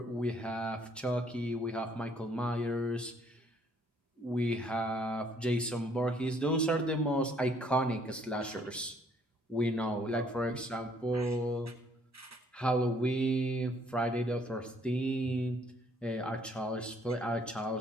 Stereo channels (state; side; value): normal; both; correlation 0.64